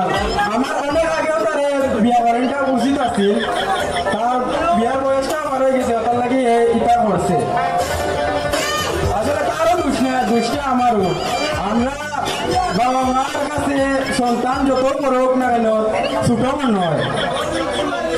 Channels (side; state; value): both; identical; correlation 1.00